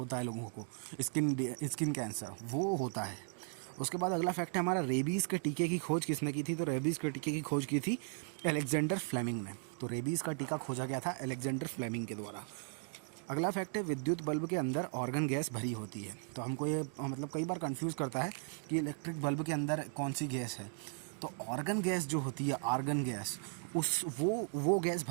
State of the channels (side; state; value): left; silent; 53 dB below the other